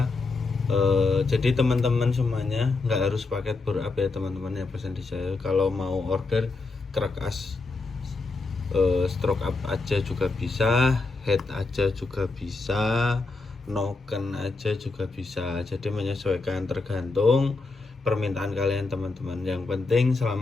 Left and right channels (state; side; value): quieter; right; 3.7 dB